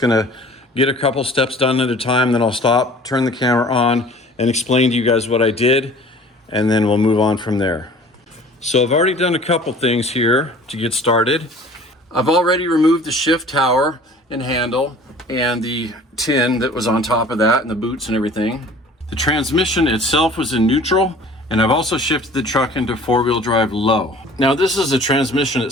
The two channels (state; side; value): normal; both; correlation 0.47